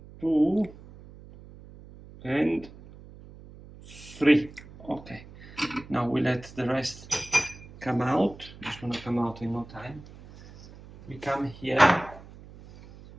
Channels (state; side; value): noise; right; hum, 19 dB below the sound